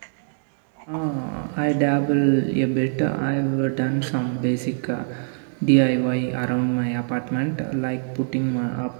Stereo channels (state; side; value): silent; left; digital silence